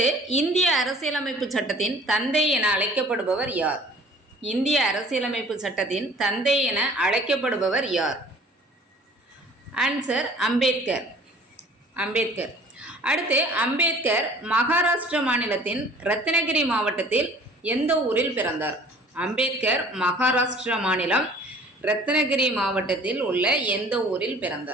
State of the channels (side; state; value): both; normal; correlation 0.50